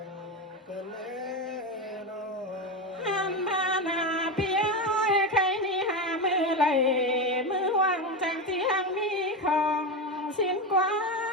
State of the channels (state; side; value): normal; both; correlation 0.16